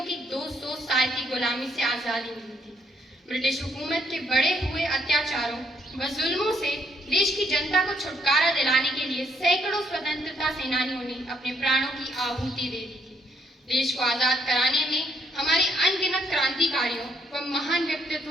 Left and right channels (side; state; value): both; normal; correlation 0.71